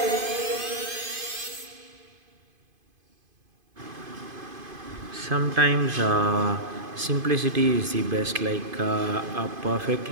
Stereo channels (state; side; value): late; left; 2.5 ms